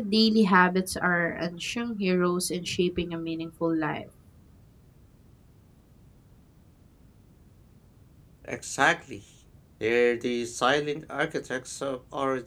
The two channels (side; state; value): both; identical; correlation 1.00